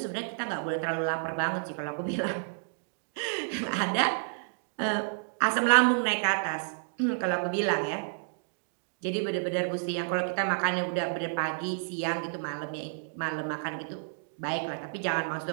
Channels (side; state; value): left; silent; digital silence